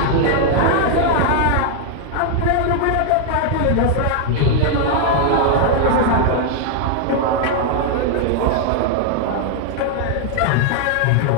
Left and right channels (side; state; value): both; different; correlation 0.00